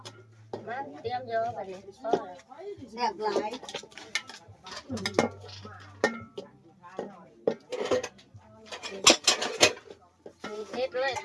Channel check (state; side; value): identical; both; correlation 1.00